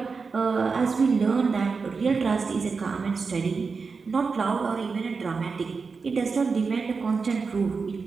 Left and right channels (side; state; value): left; quieter; 4.8 dB